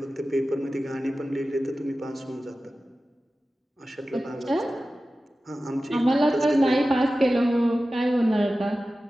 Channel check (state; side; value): normal; both; correlation 0.95